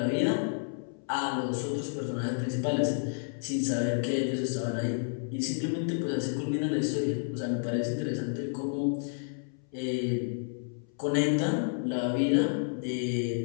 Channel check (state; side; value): silent; right; 57 dB below the other